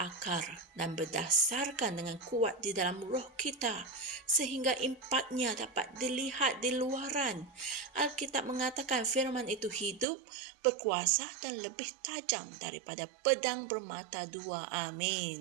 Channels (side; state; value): left; drops out; at 10.1 s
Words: dan berdasarkan dengan kuat di dalam roh kita, sehingga impaknya dapat dilihat di luaran. Alkitab mengatakan firman itu hidup, berkuasa dan lebih tajam daripada pedang bermata dua.